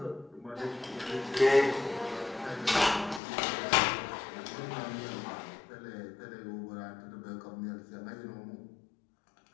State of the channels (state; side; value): drops out; right; at 3.2 s